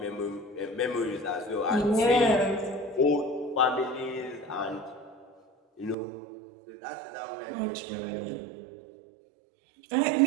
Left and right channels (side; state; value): left; drops out; at 6.0 s